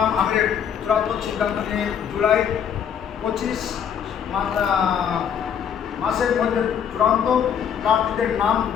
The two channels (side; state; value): right; quieter; 8.3 dB